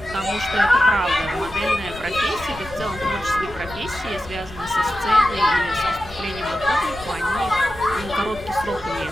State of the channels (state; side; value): noise; left; rumble, 15 dB below the sound